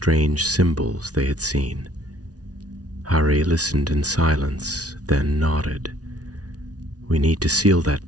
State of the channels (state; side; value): late; left; 0.68 ms